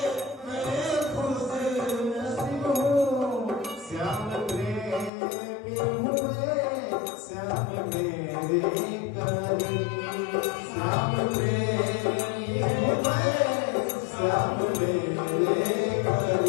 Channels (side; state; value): right; drops out; at 5.1 s